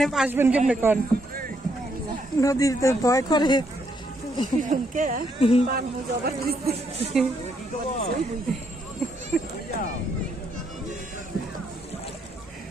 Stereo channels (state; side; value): normal; both; correlation 0.74